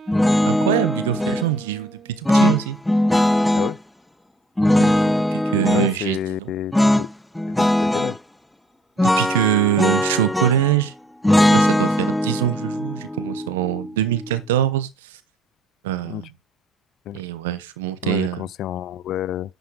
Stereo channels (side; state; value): both; normal; correlation 0.61